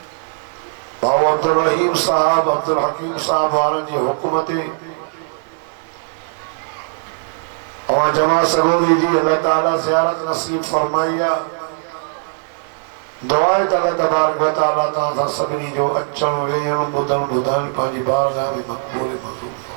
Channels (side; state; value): left; silent; digital silence